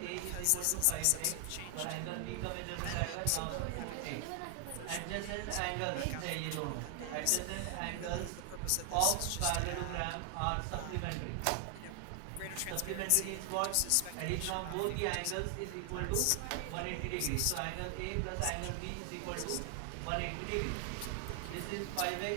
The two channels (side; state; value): both; different; correlation 0.00